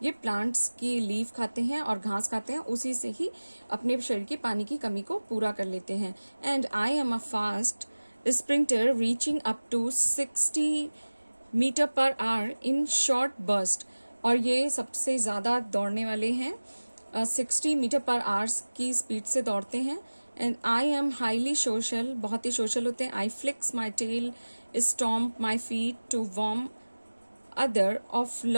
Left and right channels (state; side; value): inverted; both; correlation -1.00